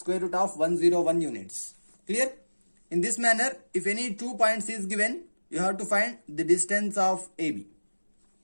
root of 101 units. Clear? In this manner, if any 2 points is given, you have to find the distance of AB.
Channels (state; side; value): inverted; both; correlation -1.00